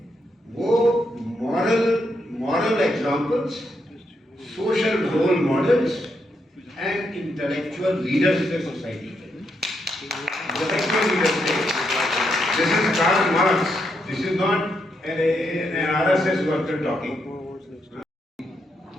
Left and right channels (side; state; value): both; normal; correlation 0.80